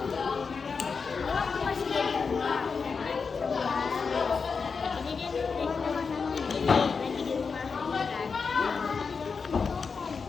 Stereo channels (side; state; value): right; quieter; 5.2 dB